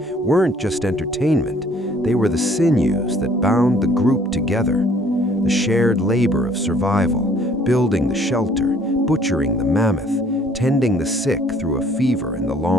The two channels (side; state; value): both; normal; correlation 0.58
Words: weren't just entertainment. They were the sinews that bound the group together. The shared labor of survival, building the shelter, butchering the mammoth, tending the sick through a fever in the